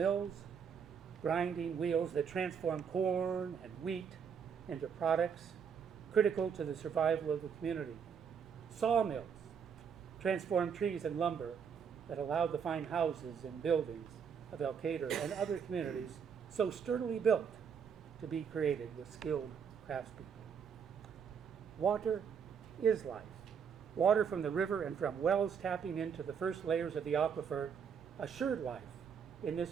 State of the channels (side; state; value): left; quieter; 7.0 dB